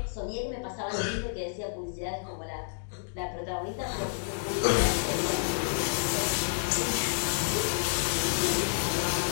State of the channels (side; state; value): right; silent; digital silence